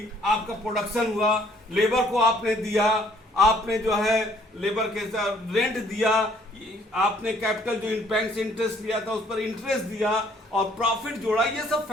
आपका प्रोडक्शन हुआ, लेबर को आपने दिया, आपने जो है लेबर के साथ रेंट दिया, आपने कैपिटल जो बैंक से इंटरेस्ट लिया था उस पर इंटरेस्ट दिया और प्रॉफिट जोड़ा, ये सब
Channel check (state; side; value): normal; both; correlation 0.61